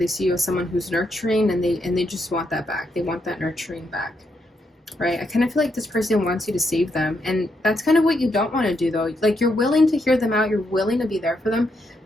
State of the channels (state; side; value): normal; both; correlation 0.79